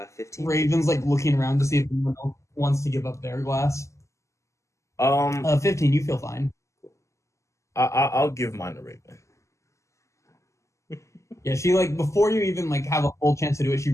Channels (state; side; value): late; right; 0.14 ms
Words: 15. Raven's like looking around to see if anyone else wants to give up their glass. 15. You feel fine. I'll give mine to Raven. Yeah, she before you even have a full chance to do it, she